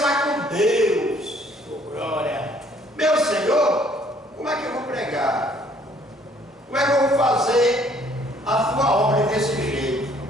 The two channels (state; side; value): normal; both; correlation 0.61